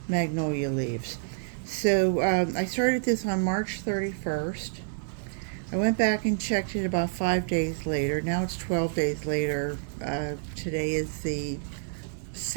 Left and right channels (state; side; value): silent; left; digital silence